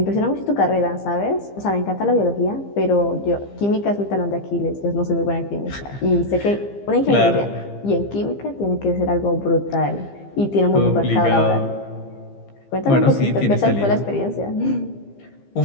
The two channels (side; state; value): right; late; 15 ms